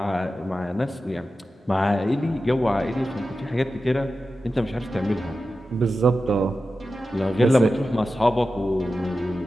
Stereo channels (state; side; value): normal; both; correlation 0.92